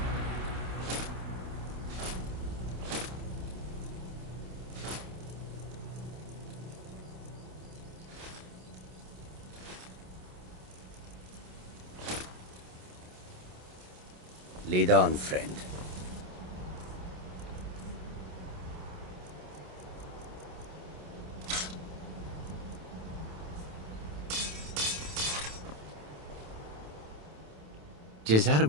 Lead on, friend.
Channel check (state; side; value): late; left; 27 ms